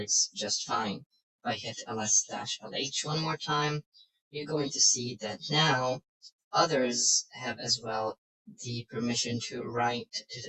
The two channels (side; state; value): both; identical; correlation 1.00